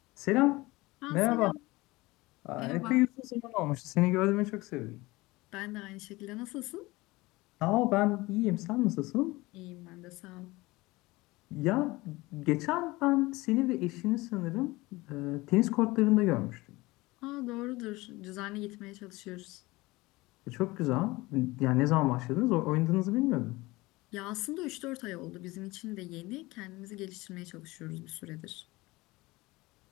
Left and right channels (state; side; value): quieter; right; 21.2 dB